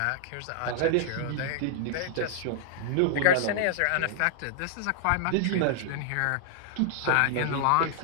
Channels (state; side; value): different; both; correlation -0.01